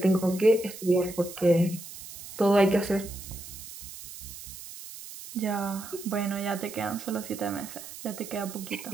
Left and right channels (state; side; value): noise; right; hiss, 13 dB below the sound